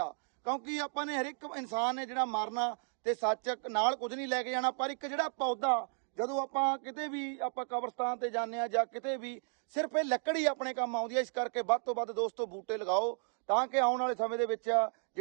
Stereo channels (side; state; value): left; silent; 55 dB below the other